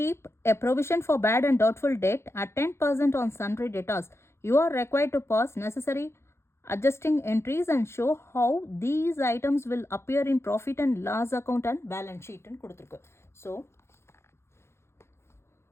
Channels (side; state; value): right; late; 0.13 ms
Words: a provision for bad and doubtful debt at 10% on sundry debtors. You are required to pass necessary adjusting entries and show how these items will appear in profit and loss account and balance sheet ன்னு கொடுத்திருக்கு. So